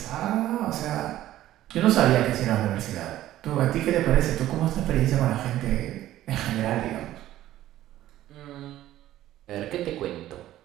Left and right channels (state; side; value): quieter; left; 13.9 dB